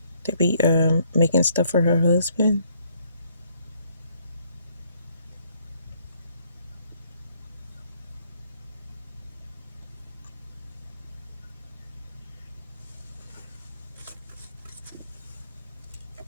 to be making stuff for her husband?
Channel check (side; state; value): both; inverted; correlation -0.67